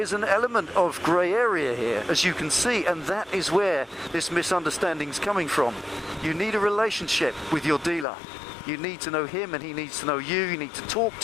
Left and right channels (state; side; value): drops out; right; at 8.1 s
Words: an element of grey area here, as you can see, and that is where this misunderstanding is coming from. You need a relationship with your dealer. You need to know him and he needs to know you. You need to talk